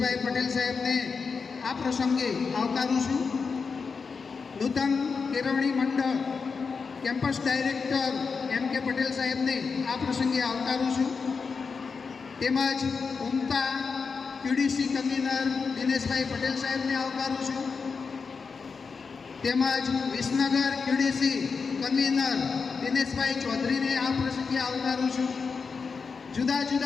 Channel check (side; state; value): right; quieter; 5.1 dB